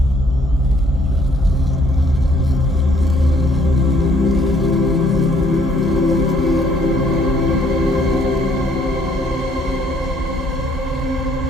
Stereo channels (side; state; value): both; normal; correlation 0.64